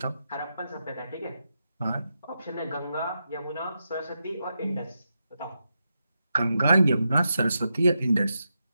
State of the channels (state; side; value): inverted; both; correlation -0.87